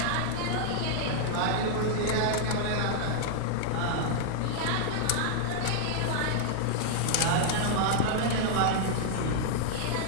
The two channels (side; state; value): both; different; correlation -0.01